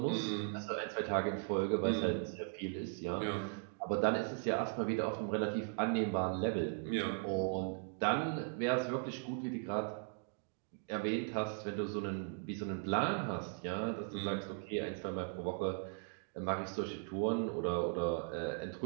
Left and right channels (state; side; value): silent; left; 52 dB below the other